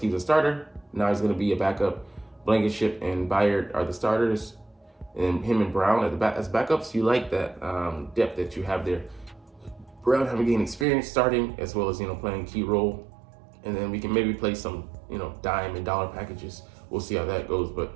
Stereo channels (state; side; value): drops out; left; at 10.9 s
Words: was a starter. Now he's going to be a backup. Blankenship and Byard are the starters, and him and Brown as backups. You like that depth that you have there. Brown having gained experience starting, as well as playing a key role, and then we can maybe play some dime and dollar packages. We'll see how that goes. But